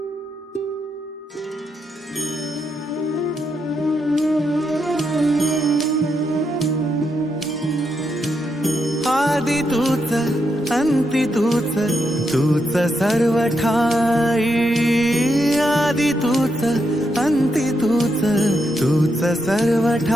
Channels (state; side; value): normal; both; correlation 0.82